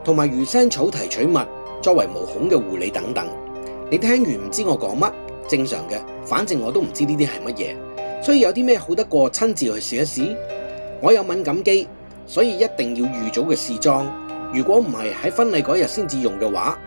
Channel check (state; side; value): inverted; both; correlation -1.00